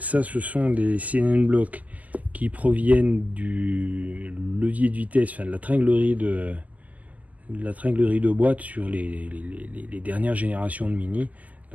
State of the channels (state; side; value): late; left; 0.076 ms